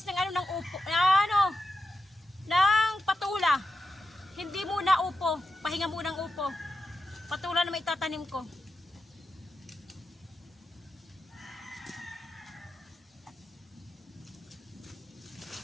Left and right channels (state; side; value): normal; both; correlation 0.88